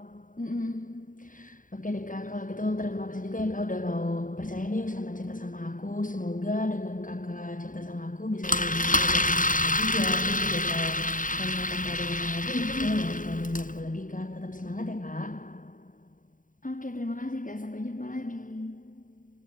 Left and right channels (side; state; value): right; late; 0.39 ms